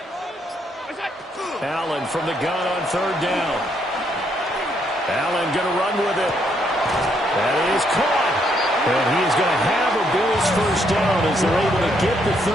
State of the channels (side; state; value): both; normal; correlation 0.73